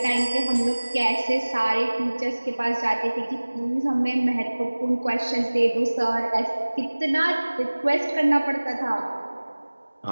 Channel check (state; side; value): inverted; both; correlation -1.00